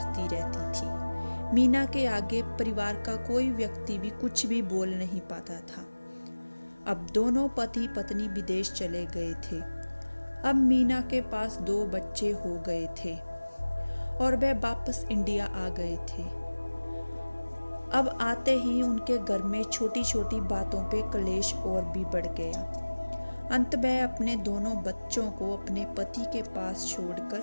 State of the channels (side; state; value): both; inverted; correlation -1.00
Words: रहती थी। मीना के आगे परिवार का कोई व्यक्ति भी कुछ भी बोल नहीं पाता था। अब दोनों पति पत्नी विदेश चले गए थे। अब मीना के पास 2 बच्चे हो गए थे और वह वापस इंडिया आ गए थे। अब आते ही उनके घर में छोटी छोटी बातों पे कलेश और भी बढ़ गया। अंत वह अपने दोनों बच्चों को अपने पति के पास